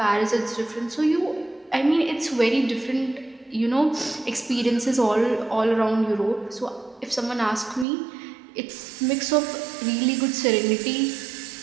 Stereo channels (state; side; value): drops out; left; at 7.9 s